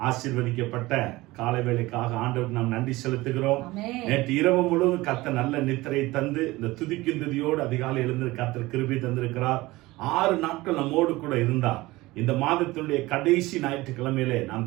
ஆசீர்வதிக்கப்பட்ட காலை வேளைக்காக ஆண்டவருக்கு நாம் நன்றி செலுத்துகிறோம். நேற்று இரவு முழுவதும் கர்த்தர் நல்ல நித்திரை தந்து இந்த துதிக்கும் துதியோடு அதிகாலை எழுந்து கர்த்தர் கிருபை தந்திருக்கிறார். 6 நாட்கள் நம்மோடு கூட இருந்தார். இந்த மாதத்தினுடைய கடைசி ஞாயிற்றுக்கிழமையிலே நாம்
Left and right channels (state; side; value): quieter; left; 19.8 dB